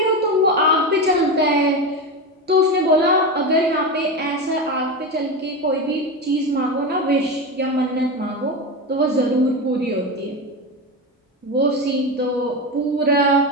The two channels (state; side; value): normal; both; correlation 0.19